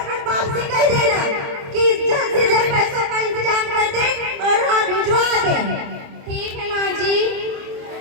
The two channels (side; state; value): left; late; 28 ms